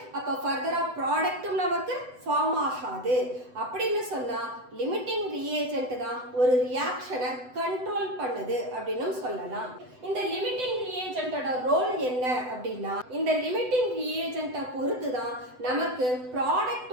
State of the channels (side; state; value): left; late; 7.9 ms